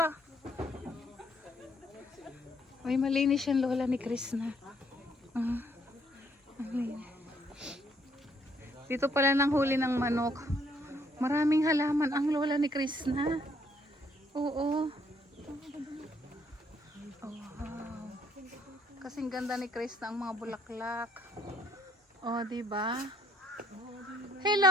May malinis yung lola ni Chris na. Ang linis. Dito pala nang huli ng manok. Maraming halaman ang lola ni Chris na. Oo. Oh, wow. Kasing ganda ni Chris na ang mga bulaklak. Oh, di ba?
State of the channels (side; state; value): both; normal; correlation 0.68